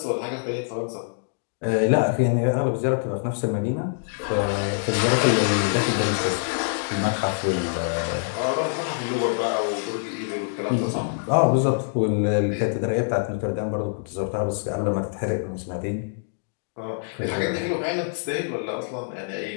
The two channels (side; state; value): right; silent; digital silence